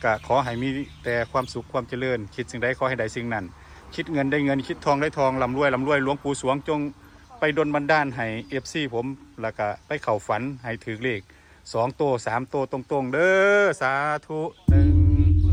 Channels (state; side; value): identical; both; correlation 1.00